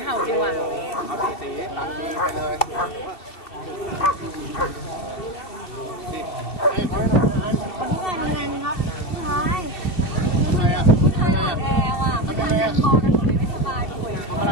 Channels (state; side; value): late; right; 2.7 ms